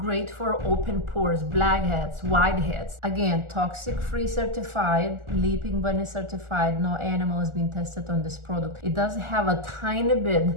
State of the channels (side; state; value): left; late; 1.4 ms